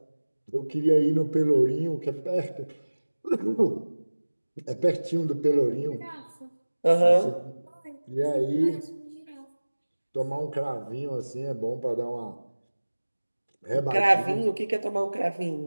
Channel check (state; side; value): inverted; both; correlation -1.00